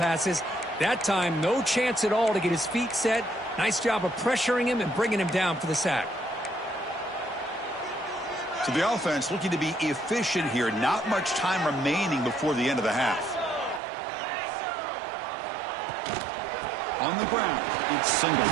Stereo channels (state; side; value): drops out; left; at 13.8 s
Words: That time, no chance at all to get his feet set. Nice job of pressuring him and bringing him down for the sack. So the offense looking to be efficient here. Not much time remaining before the end of the half. On the ground, it's